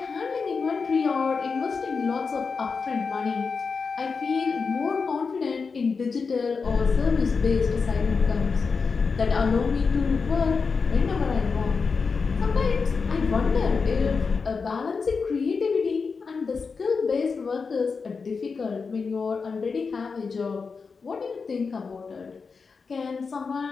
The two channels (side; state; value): right; quieter; 5.0 dB